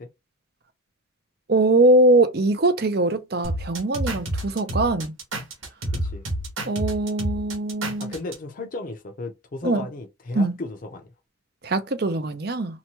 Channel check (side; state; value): both; normal; correlation 0.22